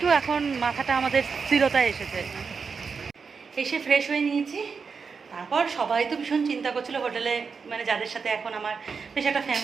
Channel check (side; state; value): left; quieter; 5.4 dB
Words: এখন মাথাটা আমাদের স্থিরতায় এসেছে। এসে ফ্রেশ হয়ে নিয়েছি। তারপর সবাই তো ভীষণ চিন্তা করছিল হোটেলে, মানে যাদের সাথে এখন আমার বেশ একটা